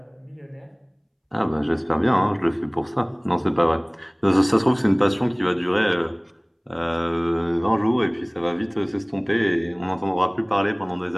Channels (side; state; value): both; identical; correlation 1.00